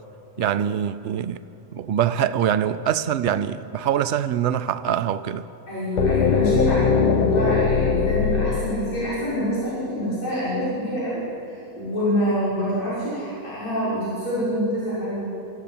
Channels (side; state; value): right; late; 8.0 ms